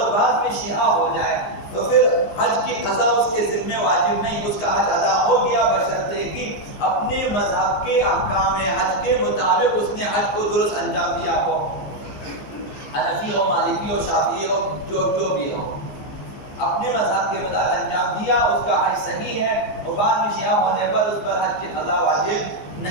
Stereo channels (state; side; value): late; right; 15 ms